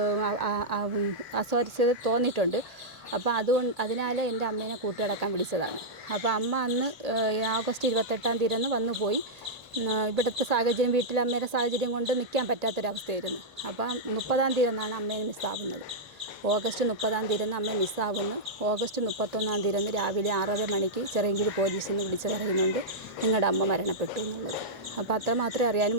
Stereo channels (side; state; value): both; normal; correlation -0.08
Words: അസ്വാരസ്യത തോന്നിയിട്ടുണ്ട്. അപ്പോൾ അതിനാൽ എൻ്റെ അമ്മേനെ കൂട്ടുകിടക്കാൻ വിളിച്ചതാണ്. അപ്പോൾ അമ്മ അന്ന് ഓഗസ്റ്റ് 28-ാം തീയതി വന്നു പോയി. ഇവിടുത്തെ സാഹചര്യം, വീട്ടിലെ അമ്മയുടെ സാഹചര്യം കൊണ്ട് നിൽക്കാൻ പറ്റാത്തൊരവസ്ഥയായിരുന്നു. അപ്പം 30-ാം തീയതി അമ്മയെ മിസ്സാവുന്നത്. ഓഗസ്റ്റ് 30-ാം തീയതി അമ്മയെ മിസ്സാവുന്നു. ഓഗസ്റ്റ് 31-ാം തീയതി രാവിലെ 6:30 മണിക്ക് ചിറയൻകീഴ് പോലീസിൽ നിന്ന് വിളിച്ച് പറയുന്നുണ്ട് നിങ്ങളുടെ അമ്മ മരണപ്പെട്ടു എന്നുള്ളത്. അപ്പോൾ അത്ര മാത്രമേ അറിയാൻ